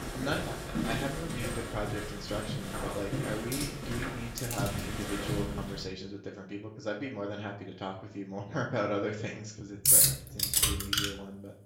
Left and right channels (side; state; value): both; identical; correlation 1.00